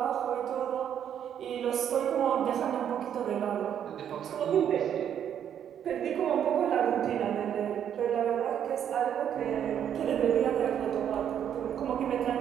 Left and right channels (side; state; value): left; quieter; 9.3 dB